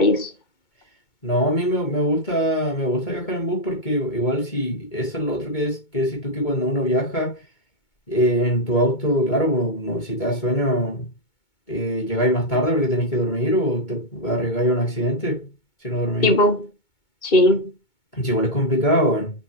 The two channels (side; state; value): right; late; 2.2 ms